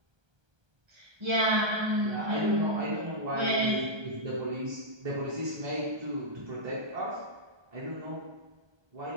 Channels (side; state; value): left; late; 1.2 ms